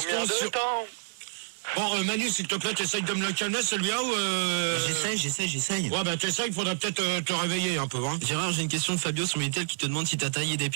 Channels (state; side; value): silent; left; 58 dB below the other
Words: sur... Bon, Manu, s'il te plaît, t'essayes de me le calmer, celui-là, ou... J'essaye. Ouais, ben t'essayes, il faudra peut-être te réveiller un peu, hein. Gérard, j'ai une question de Fabio sur Minitel qui te demande si t'as taillé des